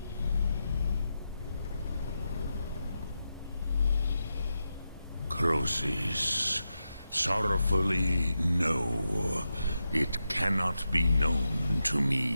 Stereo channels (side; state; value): both; inverted; correlation -0.88